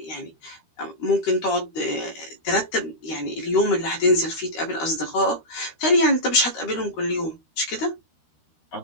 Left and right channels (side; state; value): right; late; 13 ms